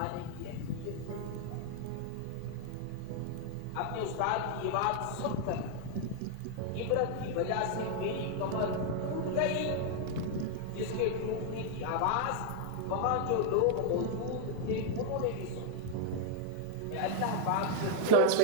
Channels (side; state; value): both; different; correlation 0.00